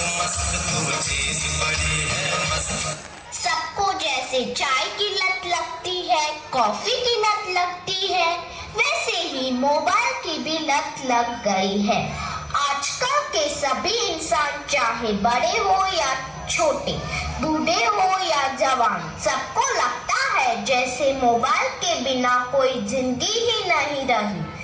मस्त, जैसे चाय की लत लगती है, कॉफी की लत लगती है, वैसे ही मोबाइल की भी लत लग गई है। आजकल के सभी इंसान, चाहे बड़े हो या छोटे, बूढ़े हो या जवान, सबको लगता है जैसे मोबाइल के बिना कोई जिंदगी ही नहीं रही।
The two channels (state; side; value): identical; both; correlation 1.00